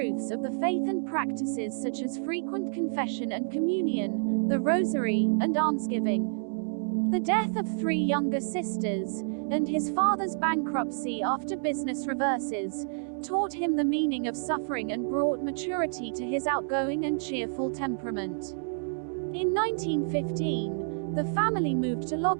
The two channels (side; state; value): left; silent; digital silence